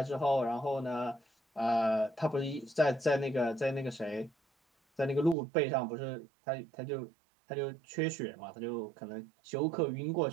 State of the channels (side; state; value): left; drops out; at 5.4 s